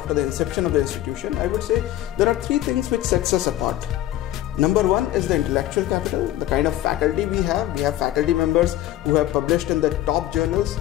the inception of the institution. I would say there are 3 things which sets us apart. Number 1 is the intellectual capital, the kind of faculty we have. We have faculty members who have published in the top journals.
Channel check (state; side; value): quieter; right; 13.9 dB